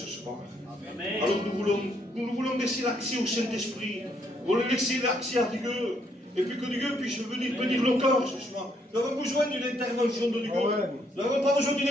soir. Amen. Alors nous voulons laisser l'accès au Saint-Esprit. Nous voulons laisser l'accès à Dieu. Et puis que Dieu puisse venir bénir nos corps ce soir. Nous avons besoin d'une intervention de Dieu. Nous n'avons pas besoin d'une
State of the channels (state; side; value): normal; both; correlation 0.71